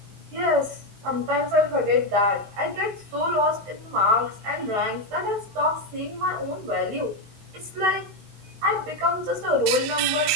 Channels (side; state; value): left; late; 20 ms